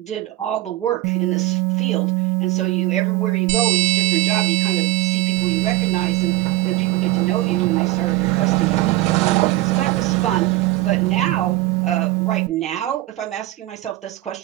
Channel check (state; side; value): quieter; left; 17.1 dB